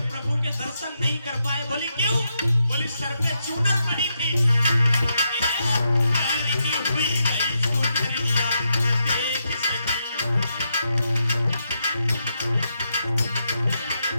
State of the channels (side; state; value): both; inverted; correlation -0.82